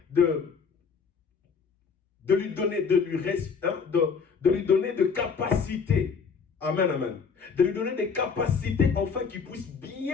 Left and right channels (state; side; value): quieter; right; 5.7 dB